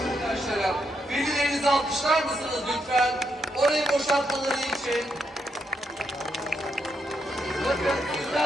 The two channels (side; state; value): both; normal; correlation 0.80